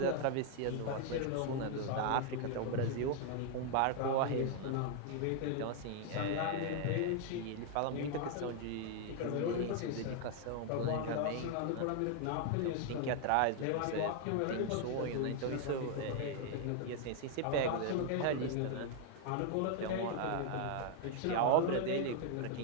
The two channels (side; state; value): both; different; correlation 0.00